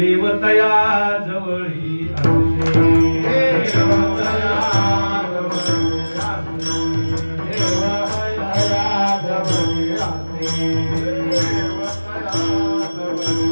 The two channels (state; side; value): inverted; both; correlation -1.00